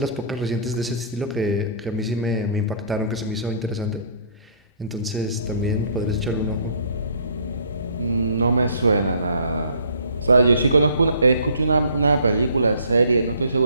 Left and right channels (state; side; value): inverted; both; correlation -0.55